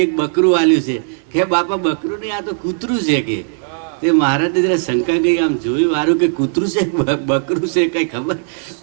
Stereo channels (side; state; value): left; silent; 64 dB below the other